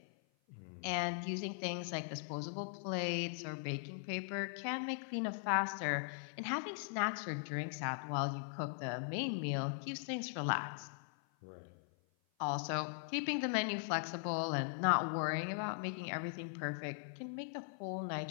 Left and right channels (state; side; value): silent; right; 51 dB below the other